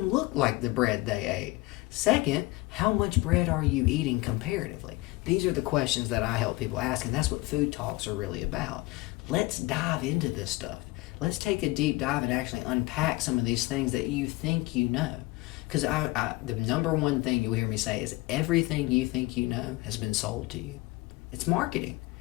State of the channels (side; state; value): right; quieter; 21.2 dB